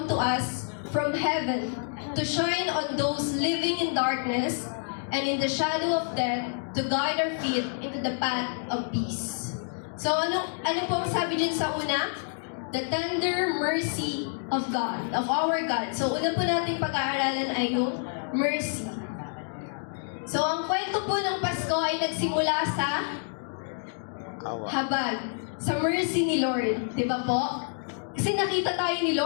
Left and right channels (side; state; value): right; silent; 59 dB below the other